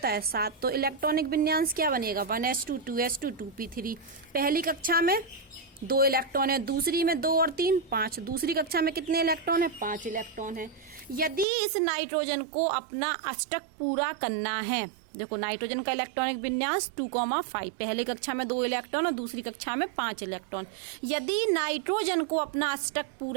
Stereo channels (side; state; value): left; drops out; at 11.5 s